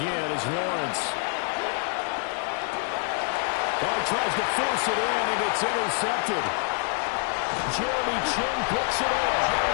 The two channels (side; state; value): right; quieter; 39.6 dB